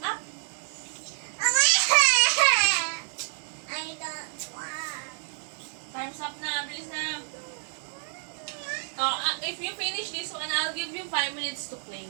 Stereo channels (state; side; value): silent; left; digital silence